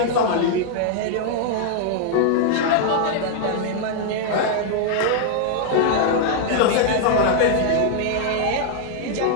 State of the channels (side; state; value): both; different; correlation 0.00